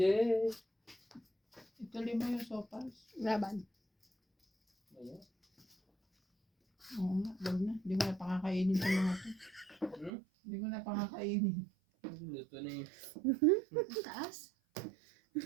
Ituloy mo yung sopas. Laban. Ayan. Oo nga, wag na. Hindi ko na pakakainin sa mga to. Hindi ko na pakakainin. Luto na yun. Ang taas.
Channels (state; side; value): drops out; left; at 10.1 s